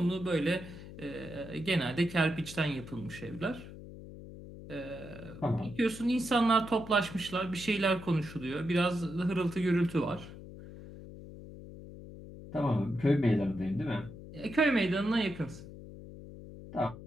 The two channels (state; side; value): noise; left; hum, 14 dB below the sound